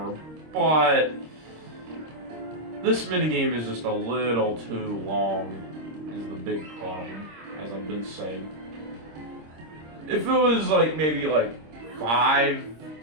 But this minigame is just a little too long, is the big problem, as I've been saying. If it was like maybe like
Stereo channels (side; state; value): left; late; 26 ms